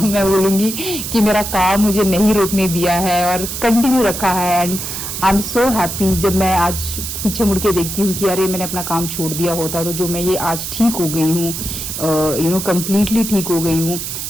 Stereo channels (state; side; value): noise; right; hiss, 6 dB below the sound